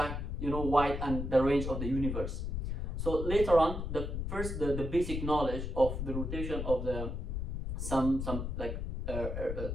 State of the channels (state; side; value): noise; left; rumble, 3 dB below the sound